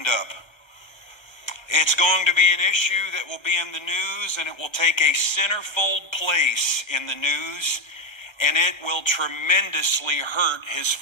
up. It's going to be an issue that will be in the news, and it will take a centerfold place in the news, and it will tremendously hurt his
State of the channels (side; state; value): right; late; 1.3 ms